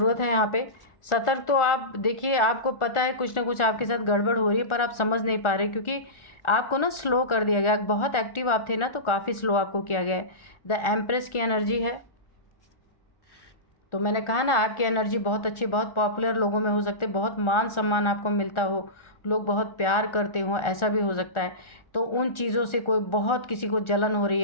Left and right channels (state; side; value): late; right; 1.4 ms